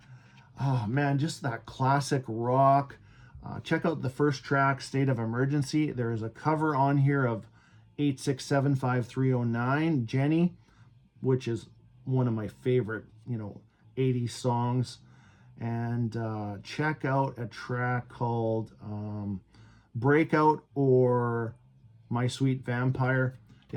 oh man, just that classic rock. Check out the first track, State of Emergency. There is a cover on here of 8675309, Jenny, which is one of my favorite, 80s songs. And check out a track called Breakout or My Sweet Vampire.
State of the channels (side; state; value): both; identical; correlation 1.00